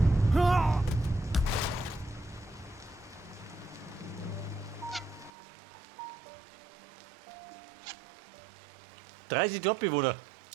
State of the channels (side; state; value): left; drops out; at 5.3 s